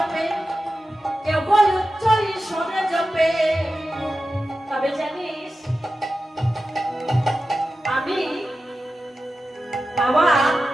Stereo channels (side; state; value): both; normal; correlation 0.93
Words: কেহ উচ্চ ঈশ্বরে জপে তবে জানিস আমি আমার